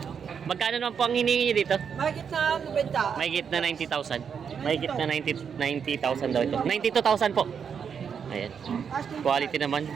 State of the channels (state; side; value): quieter; left; 7.0 dB